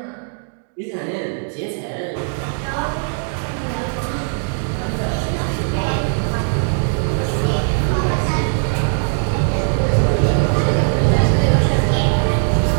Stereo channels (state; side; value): silent; left; 60 dB below the other